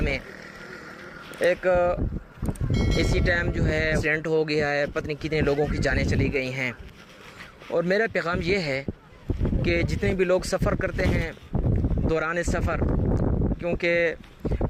میں ایک اسی ٹائم جو ہے ایکسیڈنٹ ہو گیا ہے، پتہ نہیں کتنے لوگوں کی جانیں چلی گئی ہیں۔ اور میرا پیغام یہ ہے کہ جتنے بھی لوگ سفر کرتے ہیں دوران سفر، کیونکہ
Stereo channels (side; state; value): both; identical; correlation 1.00